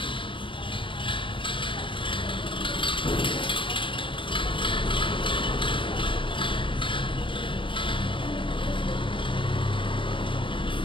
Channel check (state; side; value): late; right; 0.25 ms